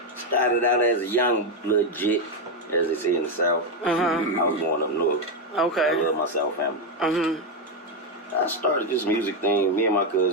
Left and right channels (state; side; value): normal; both; correlation 0.06